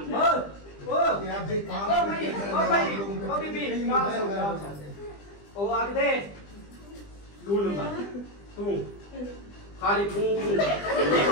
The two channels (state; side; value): late; right; 20 ms